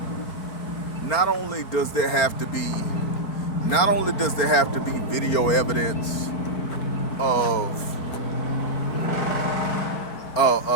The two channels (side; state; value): right; late; 4.1 ms